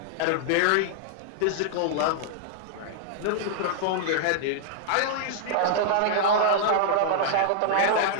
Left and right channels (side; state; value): both; different; correlation -0.01